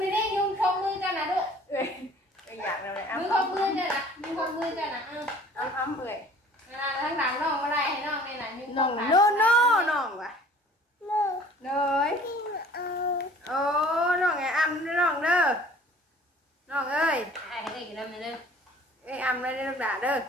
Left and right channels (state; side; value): normal; both; correlation 0.50